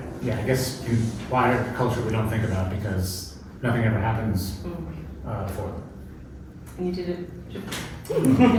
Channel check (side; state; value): both; identical; correlation 1.00